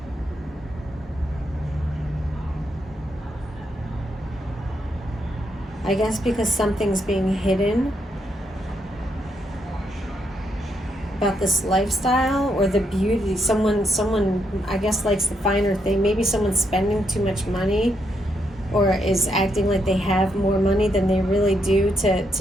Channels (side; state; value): both; normal; correlation 0.78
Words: I guess because something's being hidden about this lifestyle or the beauty. Someone I guess likes the finer thing. Maybe someone's spending too much money or is acting like they have more money than they really do